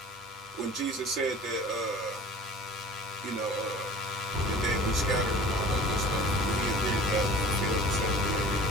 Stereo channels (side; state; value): both; normal; correlation 0.44